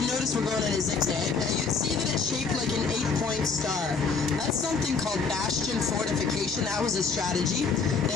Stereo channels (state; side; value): quieter; right; 5.0 dB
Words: notice we're going in a zigzag. Now, you'd see that it's shaped like an 8-point star. That's something called bastion fortification. That was a strategy.